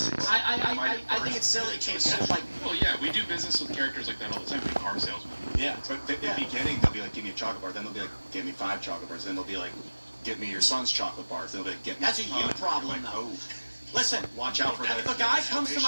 I think it's silly. It's like, well, yeah, we do business with characters like that all the time. Like car salesmen. Yeah, but in the beginning they'll be like, give me a chocolate bar. Then they'll be like, give me 5 chocolate bars. Then they'll be like, give me your son's chocolate bars. Then they'll be like, get me. That's a you problem, like, though. Oh. Listen, watch out for that. If a guy comes to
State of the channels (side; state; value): both; inverted; correlation -1.00